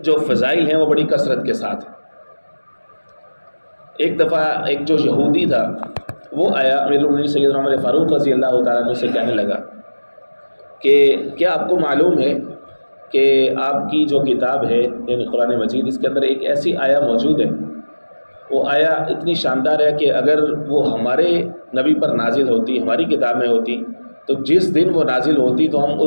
جو فضائل ہیں وہ بڑی کثرت کے ساتھ ہیں۔ ایک دفعہ ایک جو یہودی تھا وہ آیا امیر المومنین سیدنا عمر فاروق رضی اللہ تعالیٰ عنہ سے کہنے لگا کہ کیا آپ کو معلوم ہے کہ آپ کی جو کتاب ہے یعنی قرآن مجید، اس کے اندر ایک ایسی آیہ موجود ہے، وہ آیہ اتنی شاندار ہے کہ اگر وہ ہمارے نبی پر نازل ہوتی، ہماری کتاب میں ہوتی، تو جس دن وہ نازل ہوتی تو ہم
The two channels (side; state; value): both; inverted; correlation -1.00